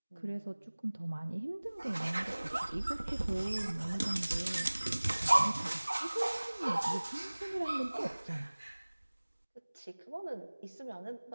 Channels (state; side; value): inverted; both; correlation -1.00